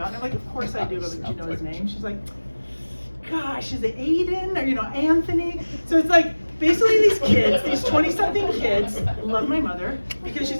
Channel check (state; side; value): inverted; both; correlation -1.00